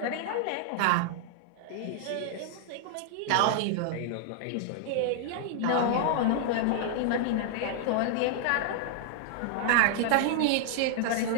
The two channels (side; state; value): both; different; correlation 0.00